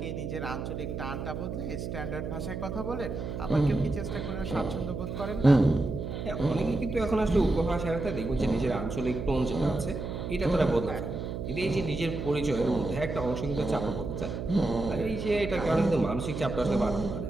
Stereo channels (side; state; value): right; noise; hum, 5 dB below the sound